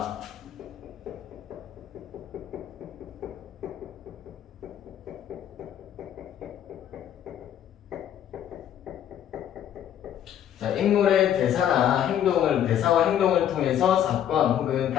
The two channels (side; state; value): right; quieter; 10.3 dB